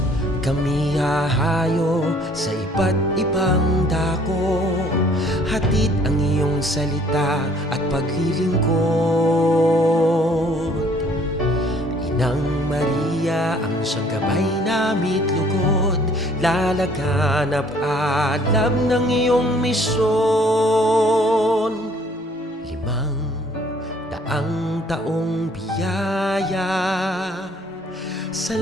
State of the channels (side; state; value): both; normal; correlation 0.58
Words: Kami hahayo sa iba't ibang dako, hatid ang iyong salita at paglilingkod. Inang Maria ang siyang gabay namit lugod, lalaganap alam ng iyong misyon. 500 taong biyaya,